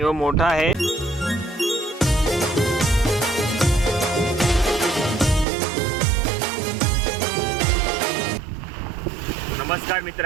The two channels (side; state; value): left; drops out; at 5.5 s